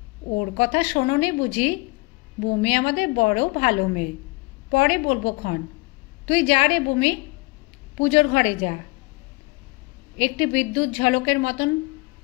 ওর কথা শোনোনি বুঝি? বুমি আমাদের বড় ভালো মেয়ে, পরে বলবো ক্ষণ। তুই যা রে বুমি, পুজোর ঘরে যা। একটি বিদ্যুৎ ঝলকের মতন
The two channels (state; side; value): quieter; right; 25.8 dB